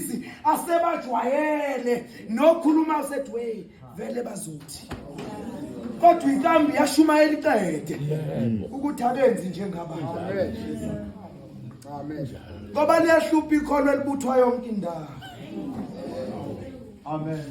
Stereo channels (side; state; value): both; identical; correlation 1.00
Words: asebajwayele nokhuluma usethi wey vele bazothi kodwa inkambi yashumayela iqede ukuthi abenzi njengabantu Amen. ngoba liyahlupha ikholwa elibuthwa yonke indawo amen